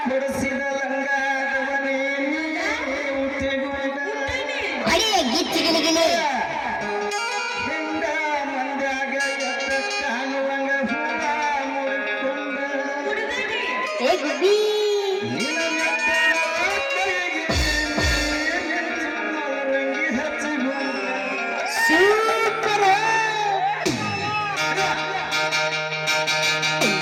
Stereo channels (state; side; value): identical; both; correlation 1.00